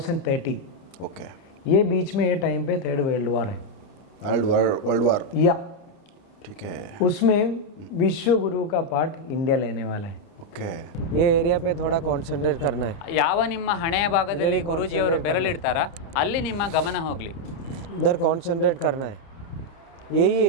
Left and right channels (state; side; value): late; right; 30 ms